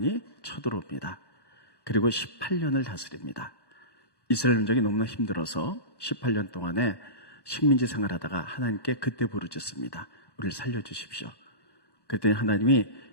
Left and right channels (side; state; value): right; late; 1.1 ms